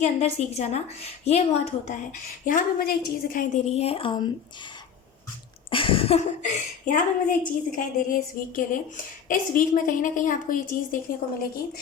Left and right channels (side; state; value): right; quieter; 7.4 dB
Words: अंदर सीख जाना, ये बहुत होता है। यहाँ पे मुझे एक चीज़ दिखाई दे रही है यहाँ पे मुझे एक चीज़ दिखाई दे रही है इस वीक के लिए। इस वीक में कहीं ना कहीं आपको ये चीज़ देखने को मिलेगी